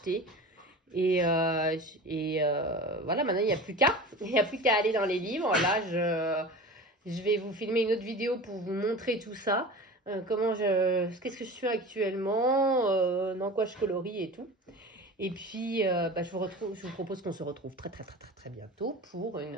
Et voilà, maintenant, il n'y a plus qu'à. Il n'y a plus qu'à aller dans les livres. Là, je vais vous filmer une autre vidéo pour vous montrer tout ça. Qu'est-ce que je fais actuellement, dans quoi je colorie et tout. Et puis, je vous propose qu'on se retrouve très bientôt pour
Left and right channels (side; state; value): both; normal; correlation 0.34